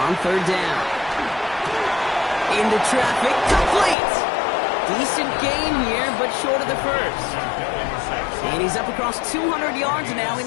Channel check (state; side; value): drops out; right; at 4.0 s